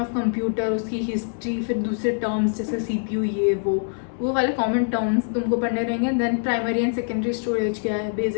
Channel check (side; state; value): right; silent; 62 dB below the other